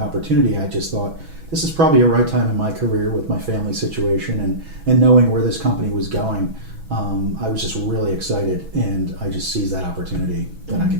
I just thought this is probably a right time in my career with my family situation and knowing where this company was going. I was just really excited, and I just seized that opportunity that I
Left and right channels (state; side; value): late; left; 6.1 ms